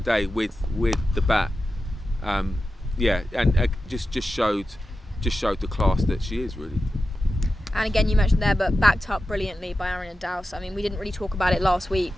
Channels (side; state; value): both; normal; correlation 0.92